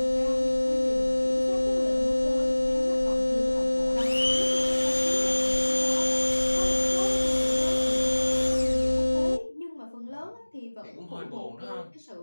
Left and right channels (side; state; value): both; inverted; correlation -1.00